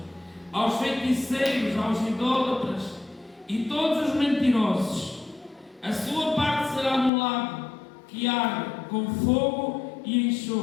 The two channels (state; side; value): drops out; right; at 7.1 s